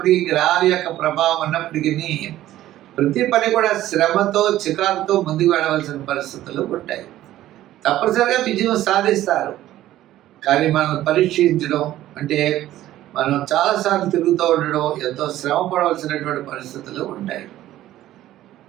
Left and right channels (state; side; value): quieter; left; 14.0 dB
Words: గ్రహాల యొక్క ప్రభావం ఉన్నప్పటికీ ప్రతి పని కూడా శ్రమతో, చికాకుతో ముందుకు వెళ్ళవలసిన పరిస్థితులు ఉంటాయి. తప్పనిసరిగా విజయం సాధిస్తారు. కానీ మనం పరీక్షించడం అంటే మనం చాలాసార్లు తిరుగుతూ ఉండడం, ఎంతో శ్రమ పడవలసినటువంటి పరిస్థితులు ఉంటాయి.